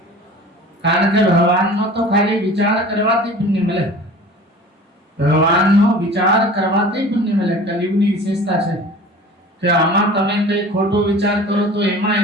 કારણ કે ભગવાનનો તો ખાલી વિચાર કરવાથી પુણ્ય મળે. ભગવાનનો વિચાર કરવાથી પુણ્ય મળે. કલિયુગની વિશેષતા છે કે આમાં તમે કઈ ખોટો વિચાર કરો તો એમાં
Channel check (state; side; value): normal; both; correlation 0.41